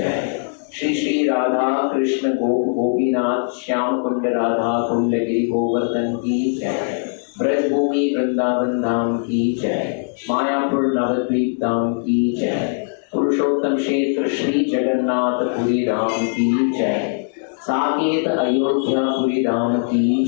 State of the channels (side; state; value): right; silent; 63 dB below the other